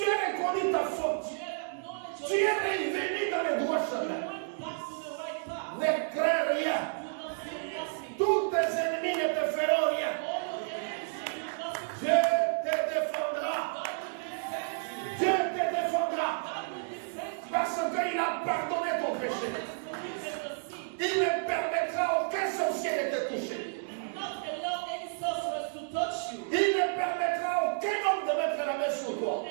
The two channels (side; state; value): left; silent; digital silence